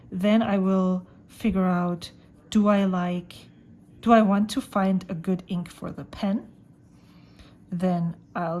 then I will figure out, do I want to find a good ink for the pen? Then I'll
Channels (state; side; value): identical; both; correlation 1.00